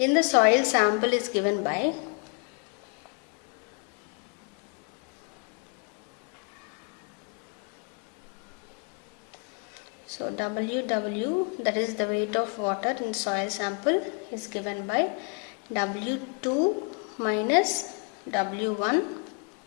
the soil sample is given by WW, that is the weight of water in soil sample, is given by W2 minus W1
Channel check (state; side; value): quieter; right; 36.3 dB